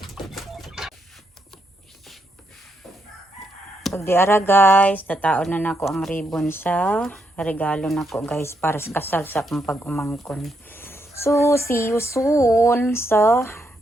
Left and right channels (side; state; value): both; normal; correlation 0.79